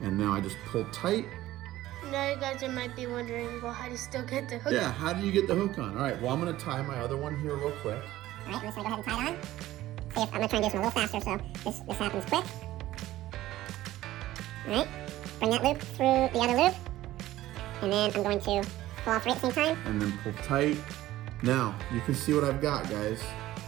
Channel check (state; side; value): quieter; left; 15.3 dB